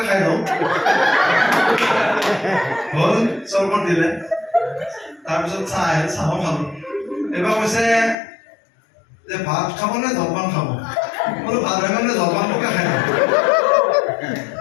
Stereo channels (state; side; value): drops out; right; at 8.2 s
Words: খাই লওঁ। হ'ল, চৰবত দিলে, তাৰপিছত চাহ আহিল, চাহো খালোঁ। এইবাৰ কৈছে যে ভাত খাব নে জলপান খাব? বোলো ভাত হৈ মানে জলপানটোকে খাই লওঁ।